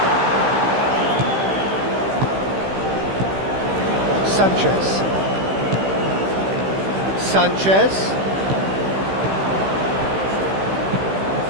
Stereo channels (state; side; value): late; left; 15 ms